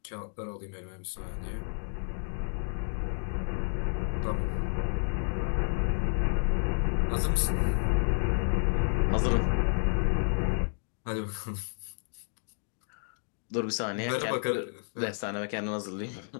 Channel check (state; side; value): silent; right; 57 dB below the other